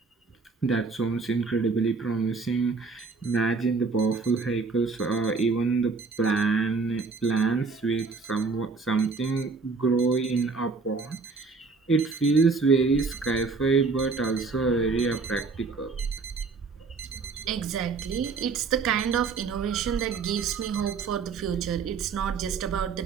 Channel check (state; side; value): quieter; left; 4.5 dB